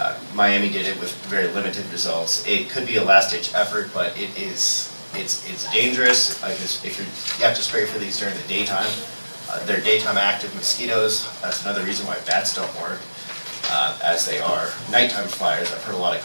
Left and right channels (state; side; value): inverted; both; correlation -1.00